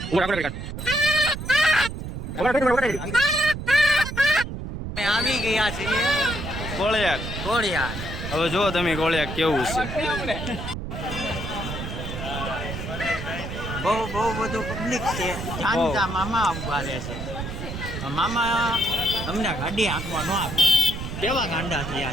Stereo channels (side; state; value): right; noise; rumble, 7 dB below the sound